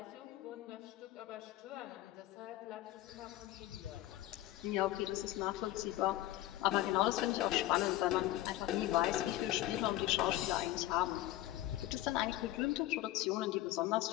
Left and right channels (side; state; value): right; quieter; 15.5 dB